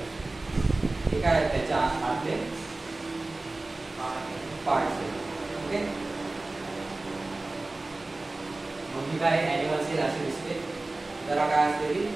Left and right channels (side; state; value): left; quieter; 3.0 dB